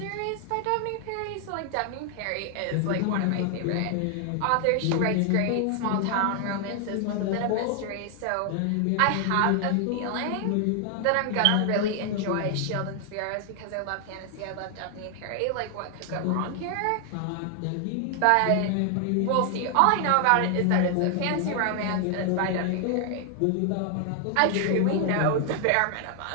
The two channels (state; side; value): different; both; correlation 0.00